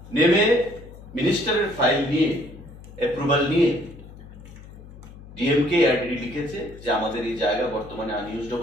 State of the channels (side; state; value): left; noise; hum, 17 dB below the sound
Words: নেমে মিনিস্টারের ফাইল নিয়ে অ্যাপ্রুভাল নিয়ে ডিএমকে এআরডিডি লিখেছে যে আমাদের এই জায়গা বর্তমানে আনইউজড